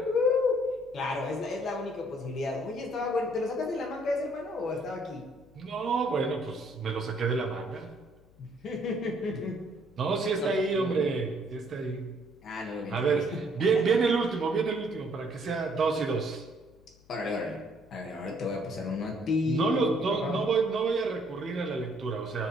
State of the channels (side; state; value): left; noise; hum, 27 dB below the sound